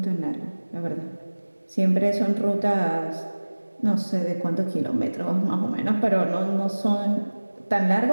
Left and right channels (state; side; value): inverted; both; correlation -1.00